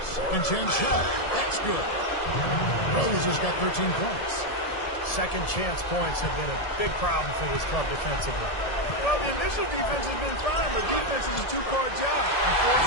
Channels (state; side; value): late; right; 1.7 ms